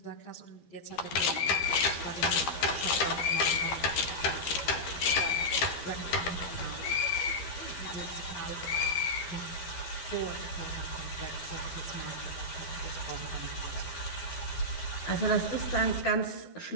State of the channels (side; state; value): right; late; 12 ms